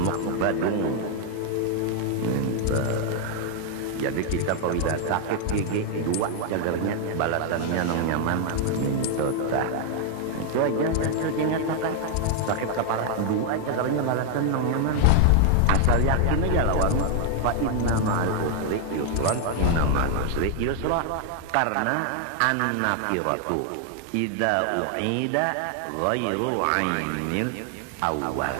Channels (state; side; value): different; both; correlation 0.00